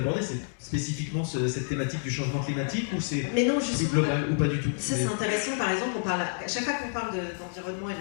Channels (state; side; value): silent; right; digital silence